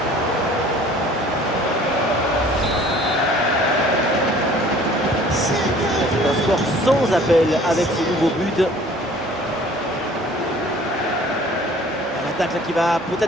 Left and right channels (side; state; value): both; normal; correlation 0.51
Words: C'est un score sans appel avec ce nouveau but. L'attaque là qui va